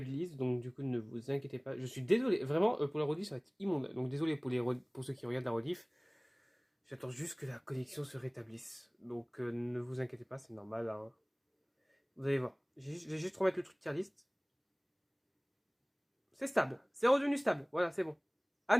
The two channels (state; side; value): identical; both; correlation 1.00